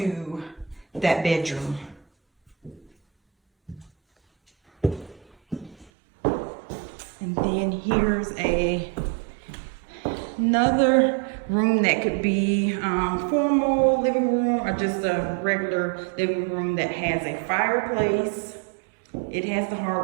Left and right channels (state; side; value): drops out; left; at 5.9 s